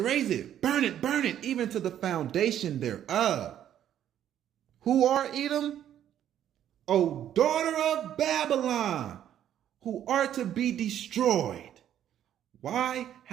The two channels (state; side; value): quieter; left; 10.7 dB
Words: burn it, even to the foundation thereof. Who are Edom? O daughter of Babylon, who are to be destroyed. Why?